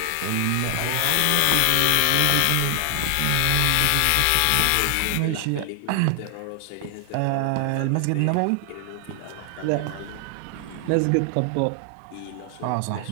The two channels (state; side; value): different; both; correlation 0.00